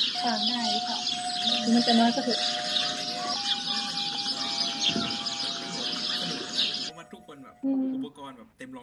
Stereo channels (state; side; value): identical; both; correlation 1.00